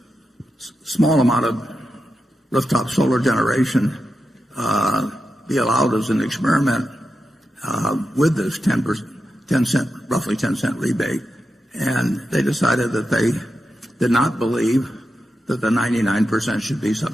small amount of rooftop solar generation be allowed as an experiment with this roughly 10 cent rebate. And they decided that they did not believe that the 99% should be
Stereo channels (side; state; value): both; normal; correlation 0.88